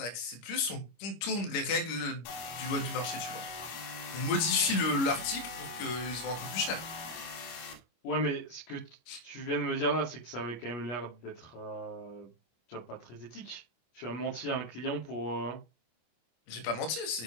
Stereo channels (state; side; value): late; right; 25 ms